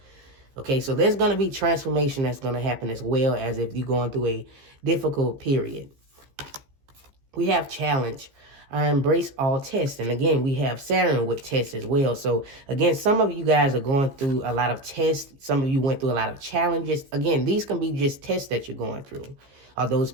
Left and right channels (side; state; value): left; late; 15 ms